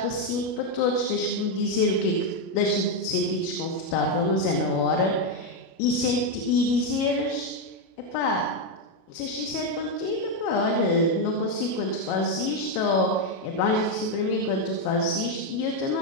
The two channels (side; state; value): right; late; 37 ms